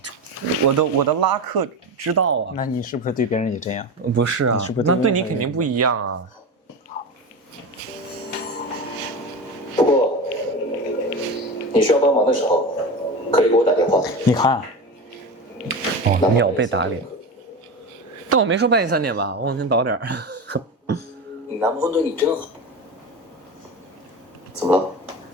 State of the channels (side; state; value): both; normal; correlation 0.24